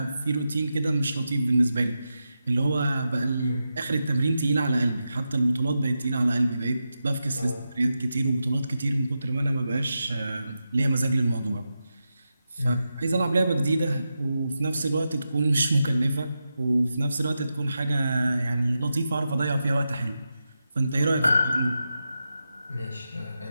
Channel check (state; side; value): inverted; both; correlation -0.89